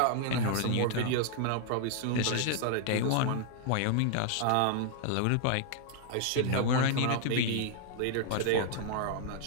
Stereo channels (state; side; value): different; both; correlation -0.01